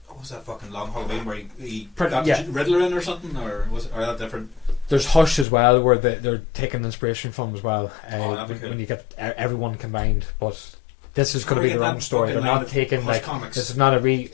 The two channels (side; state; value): right; drops out; at 5.5 s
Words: What was that fucking long Halloween where he Pretty- got yeah. Riddler in or something, or was it, or that different? There's Hush as well, where they're taking inspiration from as well. Oh, that'd be cool. When you get everyone combined, but this is going to Or be their get own that story. They're fucking line not of taking Hush like comics. this is not